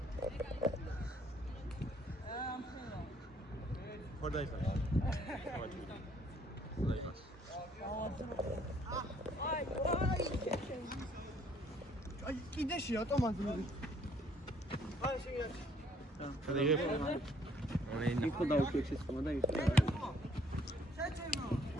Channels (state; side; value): normal; both; correlation 0.63